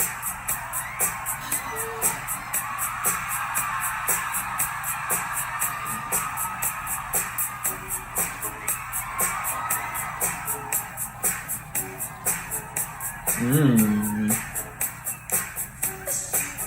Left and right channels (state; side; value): identical; both; correlation 1.00